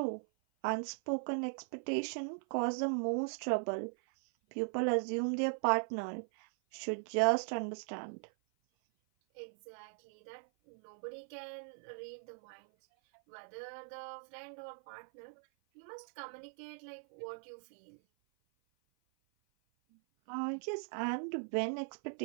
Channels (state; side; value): silent; left; 52 dB below the other